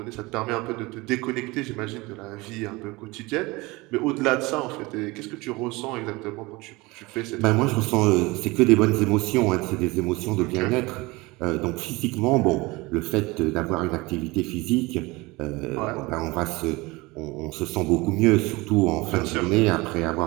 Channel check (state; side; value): quieter; left; 22.9 dB